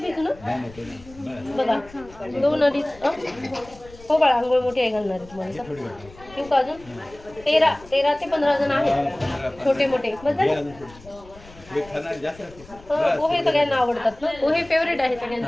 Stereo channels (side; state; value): left; noise; rumble, 22 dB below the sound